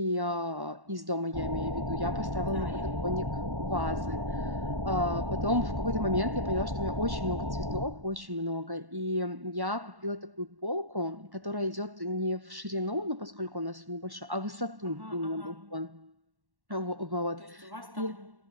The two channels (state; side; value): late; left; 1.1 ms